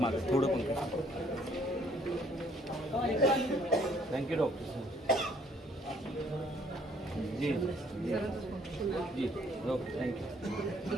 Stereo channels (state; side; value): normal; both; correlation 0.63